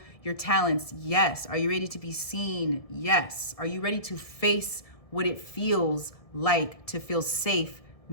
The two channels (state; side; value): late; right; 1.7 ms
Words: your talents? Yes. Are you ready to be seen? Yes. Are you ready to face what it feels like to feel safe